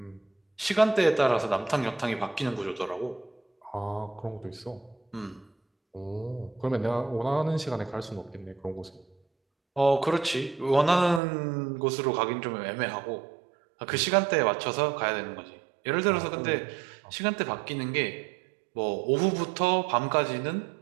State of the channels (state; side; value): drops out; left; at 11.2 s